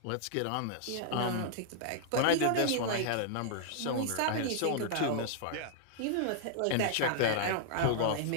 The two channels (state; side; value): different; both; correlation -0.01